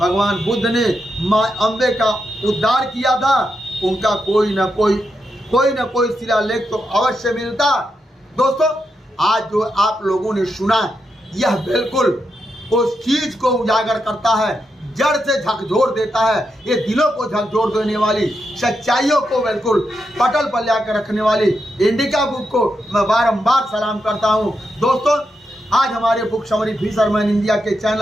बुद्ध ने माँ अम्बे का उद्धार किया था, उनका कोई न कोई शिलालेख तो अवश्य मिलता। दोस्तों, आज जो आप लोगों ने सुना यह बिल्कुल उस चीज को उजागर करता है, जड़ से झकझोर देता है। ये दिलों को झकझोर देने वाली सच्चाइयों को बिल्कुल पटल पर लाकर रखने वाली इंडिका बुक को मैं बारंबार सलाम करता हूँ। दोस्तों, आज हमारे बुक समरी फिशरमैन इंडिया के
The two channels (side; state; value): both; normal; correlation 0.85